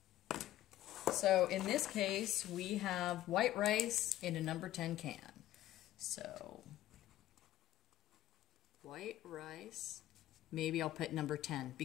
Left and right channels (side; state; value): right; quieter; 14.2 dB